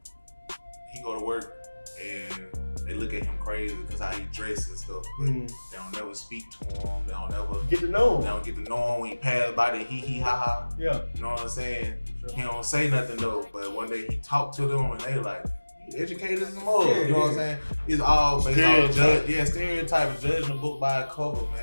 he go to work and they look at him crazy because how he dresses and stuff. But they don't never speak to him. They don't never get to know him. They don't get to know him when he pass by the hee hee ha ha. Yeah. You know what I'm saying? He don't say nothing though, but one day he talked to them and they like, you educated as a mother. Yeah, You know what I'm saying? It's all based on stereotype, judging a book by a cover,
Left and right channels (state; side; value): inverted; both; correlation -1.00